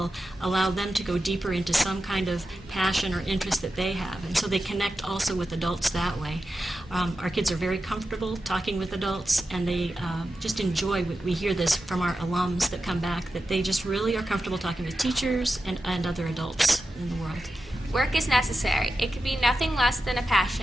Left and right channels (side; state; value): both; normal; correlation 0.91